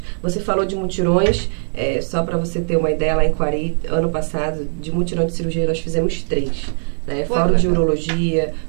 Você falou de mutirões, só para você ter uma ideia, lá em Quari, ano passado, de mutirão de cirurgia, nós fizemos 3. Fórum de urologia,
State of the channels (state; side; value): silent; left; digital silence